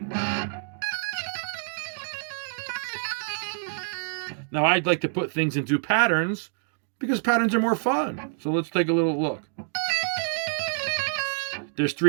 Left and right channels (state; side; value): silent; left; digital silence